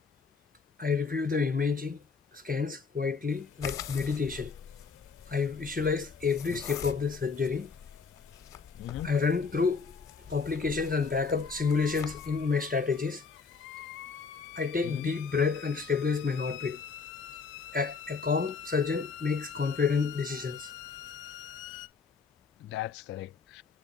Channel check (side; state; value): right; quieter; 5.0 dB